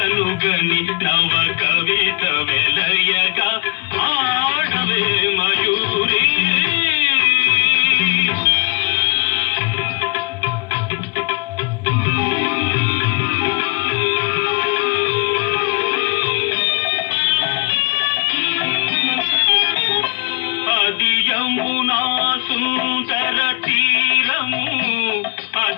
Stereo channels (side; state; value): right; quieter; 29.5 dB